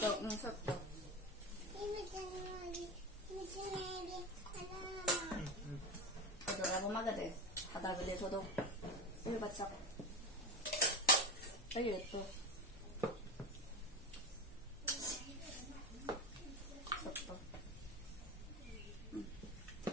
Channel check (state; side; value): normal; both; correlation 0.22